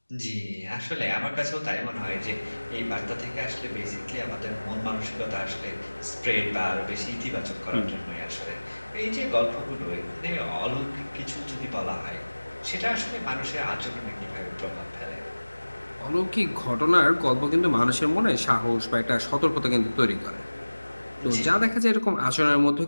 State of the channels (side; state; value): both; inverted; correlation -1.00